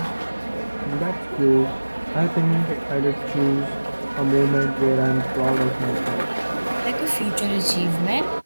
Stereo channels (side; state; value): both; inverted; correlation -1.00